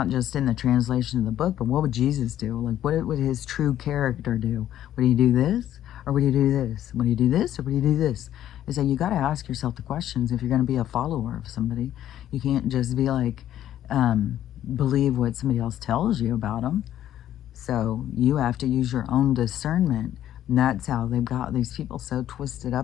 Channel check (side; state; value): right; quieter; 11.8 dB